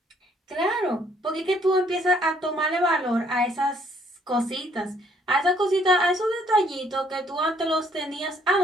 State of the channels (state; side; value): normal; both; correlation 0.65